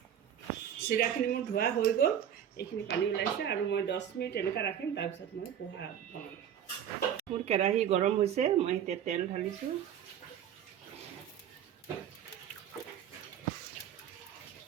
চিৰাখিনি মোৰ ধোৱা হৈ গ'ল এইখিনি পানী ওলাইছে আৰু মই 10 মিনিট এনেকৈ ৰাখিম তাৰপিছত মই পোহা বনাম মোৰ কেৰাহী গৰম হৈছে মই এতিয়া তেল ঢালিছোঁ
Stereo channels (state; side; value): quieter; left; 9.5 dB